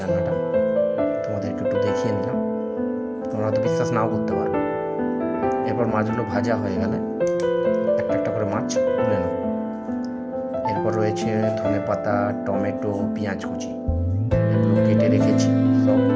রান্নাটা, তোমাদেরকে একটু দেখিয়ে নিলাম। তোমরা তো বিশ্বাস নাও করতে পারো। এরপর মাছগুলো ভাজা হয়ে গেলে একটা একটা করে মাছ তুলে নেব। এরপর রয়েছে ধনে পাতা, টমেটো, পেঁয়াজ কুচি, এগুলো কেটে রেখেছি। সব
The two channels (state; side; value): identical; both; correlation 1.00